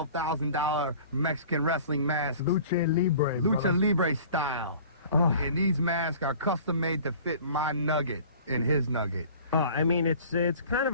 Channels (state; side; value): inverted; both; correlation -0.46